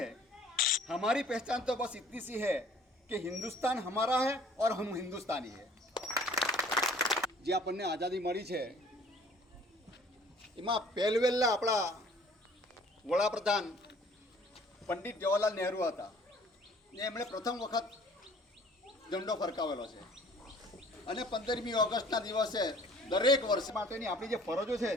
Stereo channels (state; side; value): normal; both; correlation 0.53